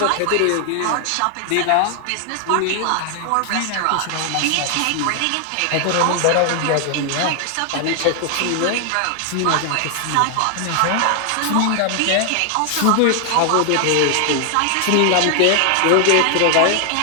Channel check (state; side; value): different; both; correlation 0.00